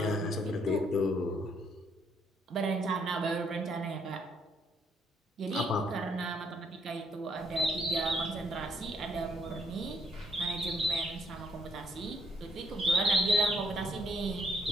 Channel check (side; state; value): both; normal; correlation 0.68